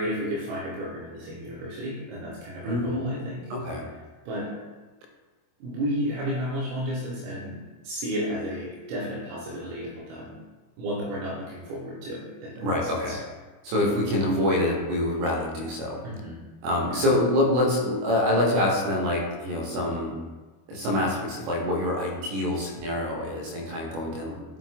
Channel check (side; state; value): left; late; 25 ms